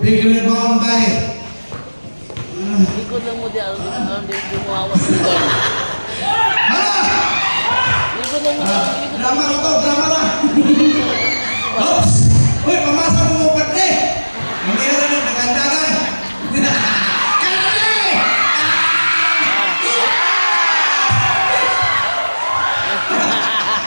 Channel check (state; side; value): inverted; both; correlation -1.00